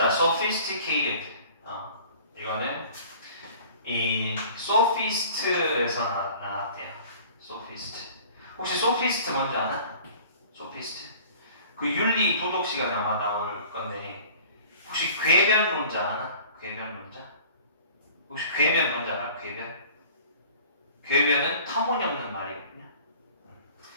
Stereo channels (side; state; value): both; inverted; correlation -0.47